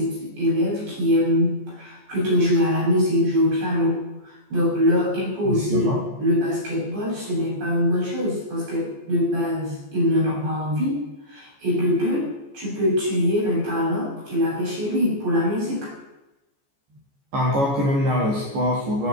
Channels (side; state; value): left; late; 14 ms